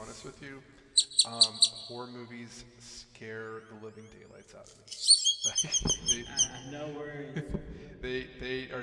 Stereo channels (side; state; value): both; identical; correlation 1.00